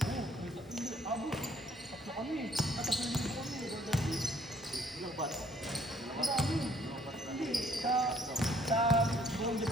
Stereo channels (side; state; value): both; normal; correlation 0.62